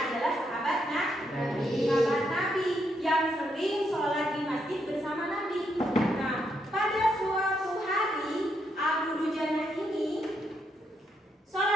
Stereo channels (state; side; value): normal; both; correlation 0.78